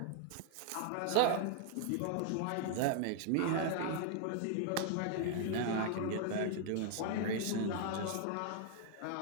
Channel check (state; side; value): different; both; correlation 0.00